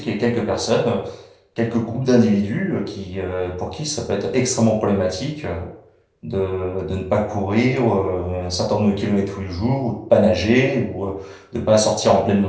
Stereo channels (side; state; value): both; identical; correlation 1.00